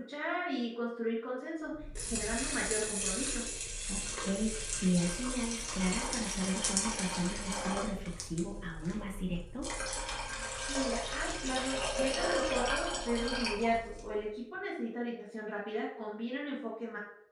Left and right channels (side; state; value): both; identical; correlation 1.00